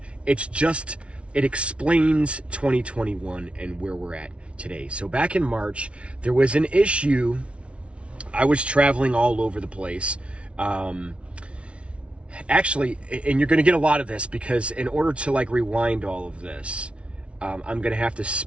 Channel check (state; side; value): late; left; 0.061 ms